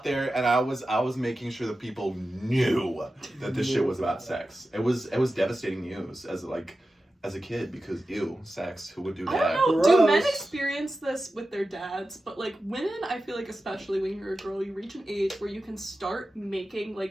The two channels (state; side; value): normal; both; correlation 0.93